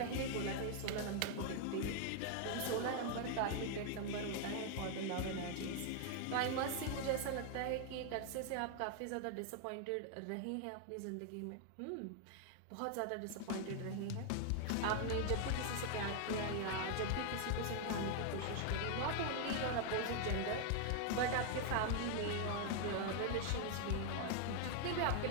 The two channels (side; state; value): both; different; correlation 0.00